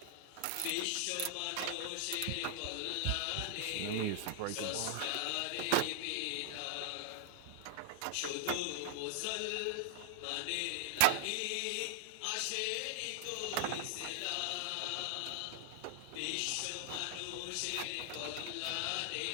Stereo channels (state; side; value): different; both; correlation 0.00